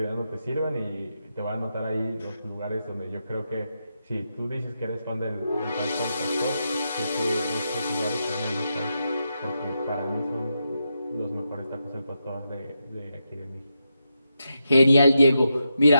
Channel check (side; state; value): both; inverted; correlation -0.86